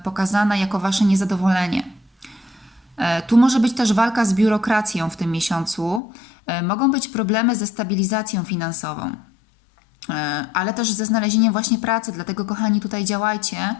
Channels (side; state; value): right; drops out; at 6.0 s